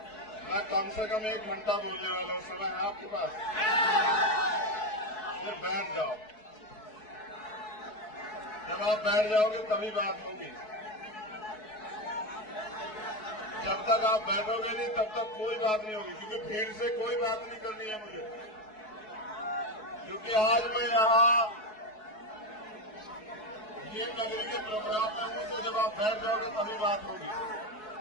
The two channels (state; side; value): late; right; 4.7 ms